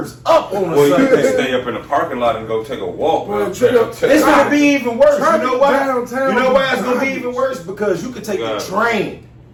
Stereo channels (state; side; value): identical; both; correlation 1.00